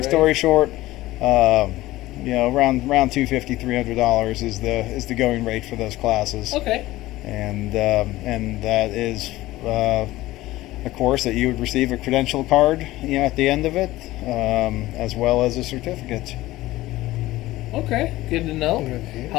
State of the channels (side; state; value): right; quieter; 17.3 dB